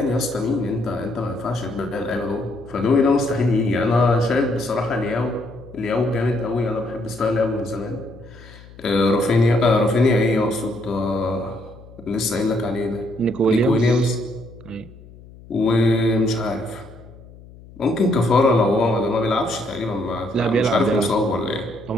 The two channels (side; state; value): left; noise; hum, 21 dB below the sound